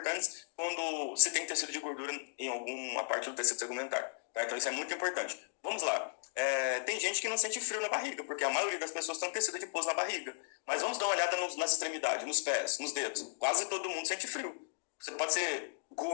quando se tem tecido de gordura em alguma parte do tecido tegumentar. Tá? Então, isso é muito importante. Vamos lá. Tem gente que não sente frio na barriga, porque a maioria das pessoas tem tecido adiposo na barriga. Mas vamos dar uma olhada nas extremidades, nos pés, nos dedos. Quase todo mundo sente frio. Você pode ser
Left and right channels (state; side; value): silent; right; digital silence